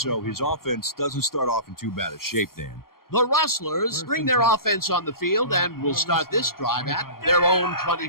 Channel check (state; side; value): late; right; 0.92 ms